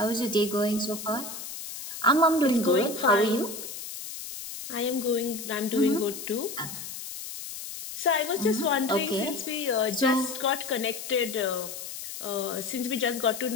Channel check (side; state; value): left; noise; hiss, 9 dB below the sound